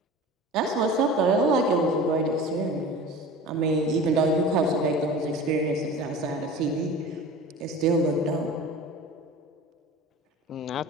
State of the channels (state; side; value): normal; both; correlation 0.37